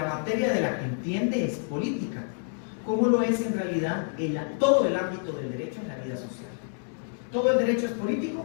materia de la que entiende es política, como lo es en realidad todo el ámbito del derecho en la vida social. ¿Todo el derecho es político?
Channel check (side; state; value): right; silent; 59 dB below the other